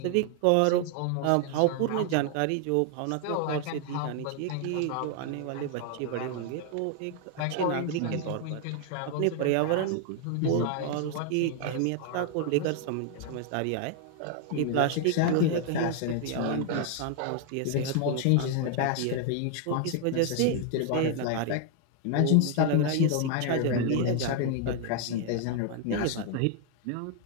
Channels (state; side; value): different; both; correlation 0.00